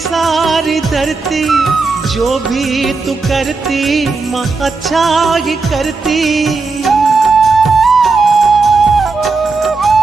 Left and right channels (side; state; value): left; quieter; 4.1 dB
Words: धरती, जो भी तू करती माँ अच्छा ही करती।